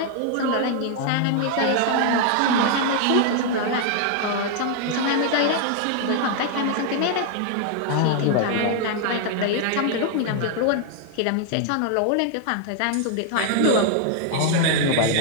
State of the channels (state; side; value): different; both; correlation 0.00